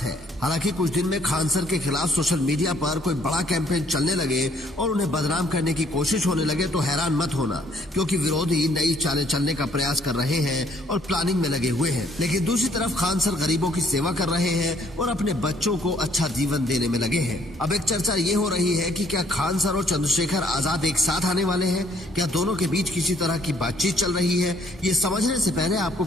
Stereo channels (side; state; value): both; normal; correlation 0.64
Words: है। हालांकि कुछ दिन में खान सर के खिलाफ सोशल मीडिया पर कोई बड़ा कैंपेन चलने लगे और उन्हें बदनाम करने की कोशिश होने लगे तो हैरान मत होना, क्योंकि विरोधी नई चालें चलने का प्रयास कर रहे हैं और प्लानिंग में लगे हुए हैं। लेकिन दूसरी तरफ खान सर गरीबों की सेवा कर रहे हैं और अपने बच्चों को अच्छा जीवन देने में लगे हैं। अब एक चर्चा ये हो रही है कि क्या खान सर और चंद्रशेखर आजाद एक साथ आने वाले हैं? क्या दोनों के बीच किसी तरह की बातचीत चल रही है? ये समझने से पहले आपको